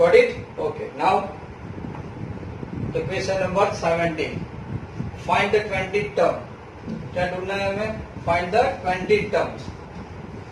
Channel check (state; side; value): identical; both; correlation 1.00